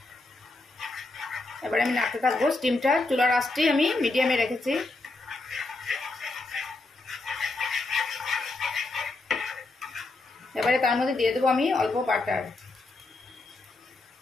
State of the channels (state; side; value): quieter; right; 3.2 dB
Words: এবারে আমি নাড়তে থাকবো। স্টিমটা চুলার আঁচটি আমি মিডিয়ামে রেখেছি। এবারে তার মধ্যে দিয়ে দেবো আমি অল্প বাটার।